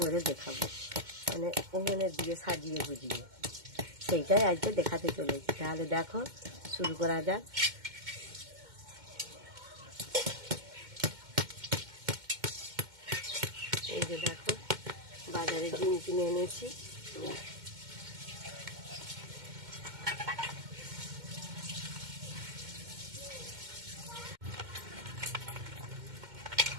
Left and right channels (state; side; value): late; left; 2.1 ms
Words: দেখাবো, মানে ওখানে দিয়ে সাজিয়ে বুঝিয়ে, সেইটাই আজকে দেখাতে চলেছি। তাহলে দেখো, শুরু করা যাক। এই যে দেখো, বাজারে ডিম কিনে এনেছি।